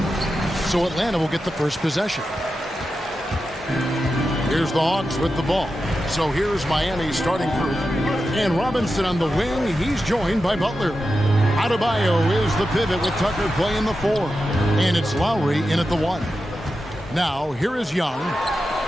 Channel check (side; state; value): both; normal; correlation 0.90